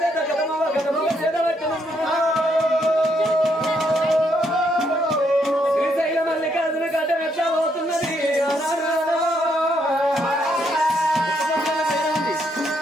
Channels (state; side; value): normal; both; correlation 0.75